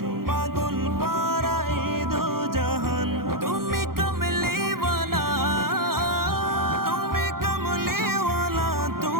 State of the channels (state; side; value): late; left; 0.93 ms